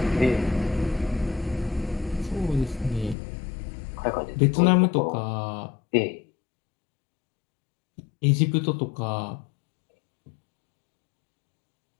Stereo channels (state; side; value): drops out; right; at 3.2 s